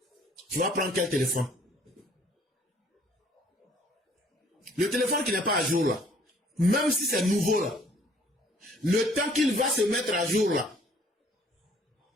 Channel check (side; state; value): both; normal; correlation 0.59